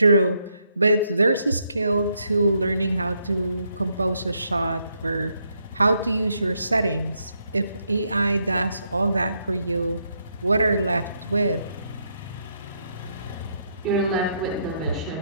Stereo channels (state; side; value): inverted; both; correlation -0.76